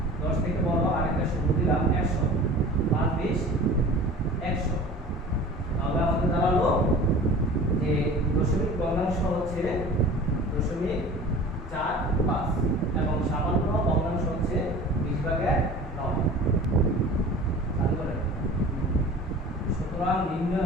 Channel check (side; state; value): both; normal; correlation 0.41